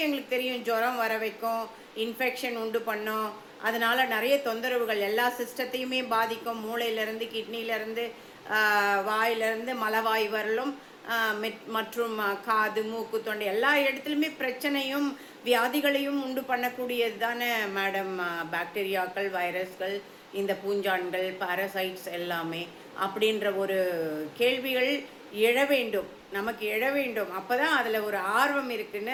எங்களுக்கு தெரியும், ஜுரம் வர வைக்கும், இன்ஃபெக்ஷன் உண்டு பண்ணும், அதனால் நிறைய தொந்தரவுகள், எல்லா சிஸ்டத்தையுமே பாதிக்கும், மூளையிலேருந்து, கிட்னிலேருந்து, வாயிலிருந்து, மலவாய் வரலும், மற்றும் காது, மூக்கு, தொண்டை எல்லா இடத்துலையுமே பிரச்சனையும் வியாதிகளையும் உண்டு பண்ணக்கூடியது தானே மேடம் பாக்டீரியாக்கள், வைரஸ்கள், இந்த பூஞ்சான்கள், பாரசைட்ஸ் எல்லாமே. அப்படின்ற ஒரு கேள்விகள் எழ வேண்டும், நமக்கு எழ வேண்டும். அப்போ தான் அதில் ஒரு ஆர்வம் இருக்குன்னு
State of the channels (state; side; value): identical; both; correlation 1.00